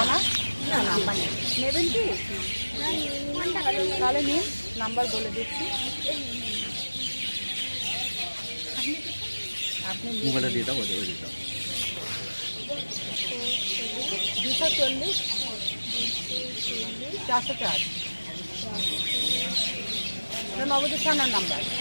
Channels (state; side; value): inverted; both; correlation -1.00